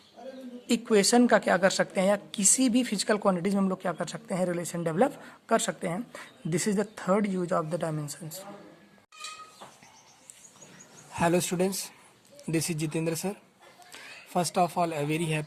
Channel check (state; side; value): identical; both; correlation 1.00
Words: इक्वेशन का क्या कर सकते हैं, या किसी भी फिजिकल क्वांटिटीज में हम लोग क्या कर सकते हैं, रिलेशन डेवलप कर सकते हैं. This is the third use of the dimensions. Hello students, this is Jitendra sir. First of all, a very